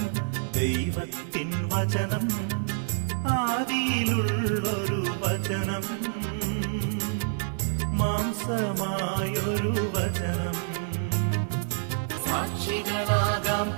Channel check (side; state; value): left; silent; 60 dB below the other